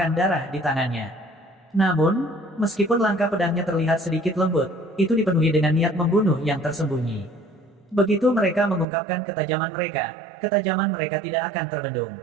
darah di tangannya. Namun, meskipun langkah pedangnya terlihat sedikit lembut, itu dipenuhi dengan niat membunuh yang tersembunyi. Begitu mereka mengungkapkan ketajaman mereka tidak akan terbendung.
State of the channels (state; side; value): drops out; left; at 8.8 s